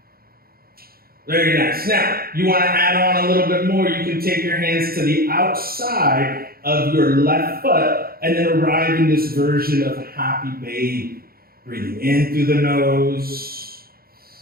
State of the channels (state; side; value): late; left; 0.44 ms